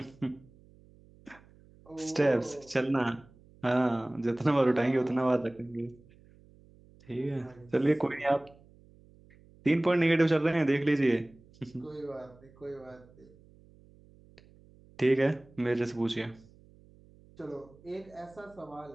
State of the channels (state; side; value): noise; right; hum, 26 dB below the sound